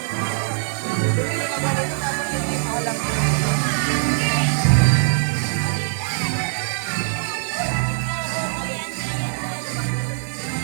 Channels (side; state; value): left; silent; digital silence